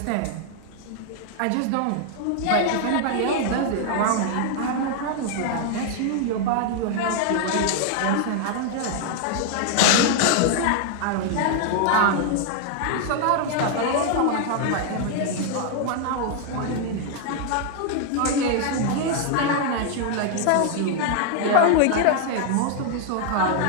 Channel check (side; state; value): both; different; correlation 0.00